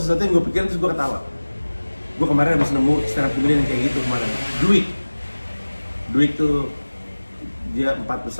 yang gue pikirin terus gue ketawa. Gue kemarin habis nemu stand up comedian yang kayak gitu kemarin. Duik tuh dia 4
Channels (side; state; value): both; inverted; correlation -1.00